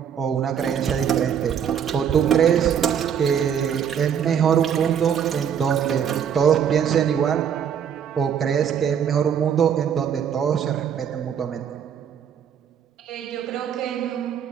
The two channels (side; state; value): left; quieter; 8.3 dB